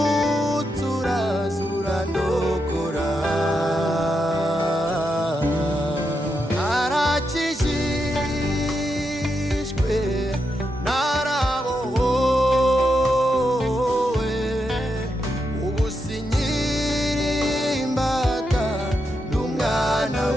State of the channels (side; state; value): both; normal; correlation 0.84